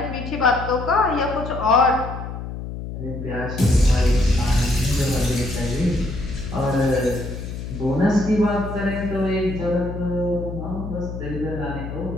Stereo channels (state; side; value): noise; left; hum, 8 dB below the sound